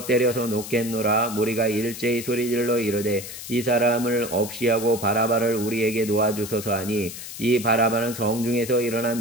때려서 놓겠노라. 무리가 일제히 소리질러 이르되 이 사람을 없이하고 바라바를 우리에게 놓아주소서 하니 이 바라바는 성중에서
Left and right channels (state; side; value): noise; left; hiss, 10 dB below the sound